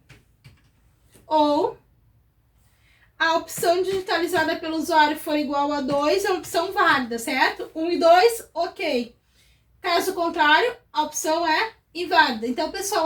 ou a opção digitalizada pelo usuário for igual a 2, é uma opção válida, certo? 1 e 2, ok. Caso contrário, a opção é inválida. Então, pessoal,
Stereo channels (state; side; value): identical; both; correlation 1.00